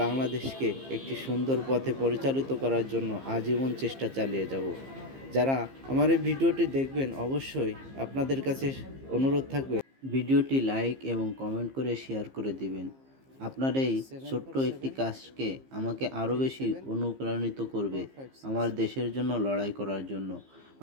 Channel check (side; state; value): left; late; 15 ms